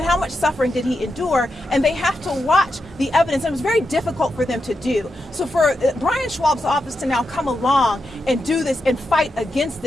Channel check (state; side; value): normal; both; correlation 0.86